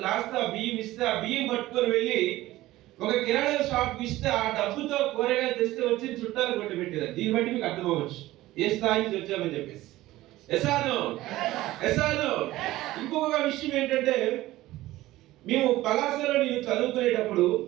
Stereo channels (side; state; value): left; quieter; 16.7 dB